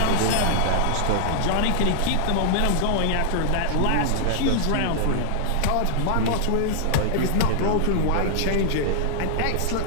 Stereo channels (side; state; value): both; different; correlation -0.01